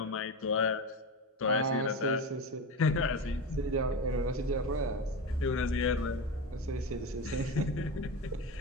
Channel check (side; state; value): both; normal; correlation 0.22